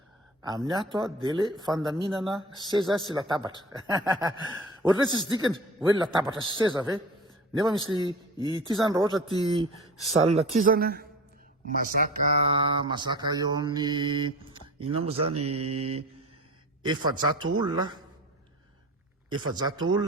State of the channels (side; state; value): both; normal; correlation 0.37